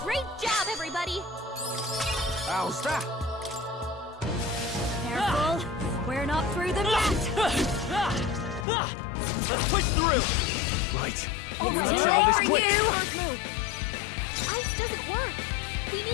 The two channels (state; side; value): drops out; right; at 8.7 s